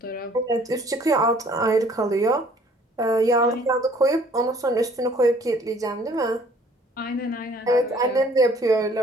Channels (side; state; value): both; normal; correlation 0.57